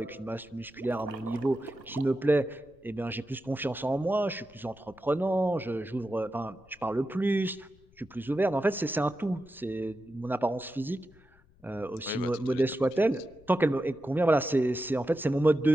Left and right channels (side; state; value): left; noise; rumble, 29 dB below the sound